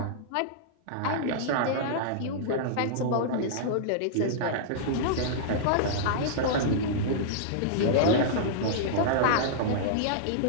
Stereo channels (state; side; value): different; both; correlation -0.02